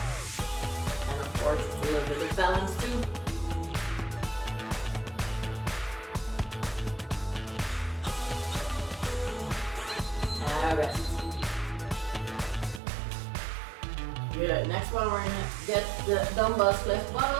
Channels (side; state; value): left; drops out; at 12.8 s